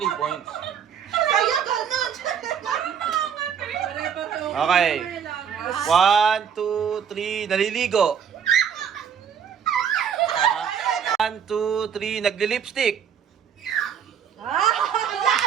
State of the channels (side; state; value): left; quieter; 7.8 dB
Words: points. Kaya ganun. Okay. 1, 2, 3, naliligo. 1, 2, 3, nagli-lipstick.